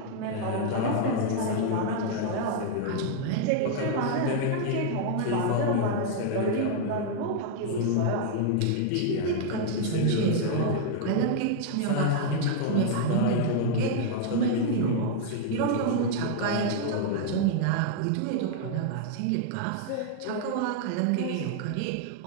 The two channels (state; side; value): different; both; correlation 0.00